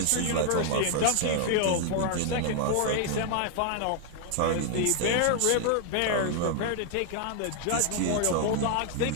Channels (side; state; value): both; different; correlation 0.00